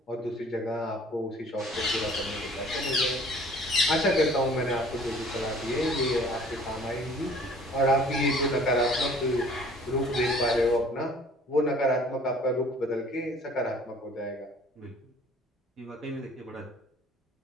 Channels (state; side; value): normal; both; correlation 0.52